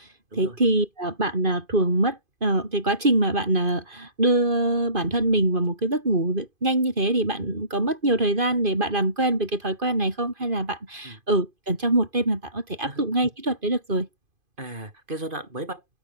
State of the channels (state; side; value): late; left; 2.5 ms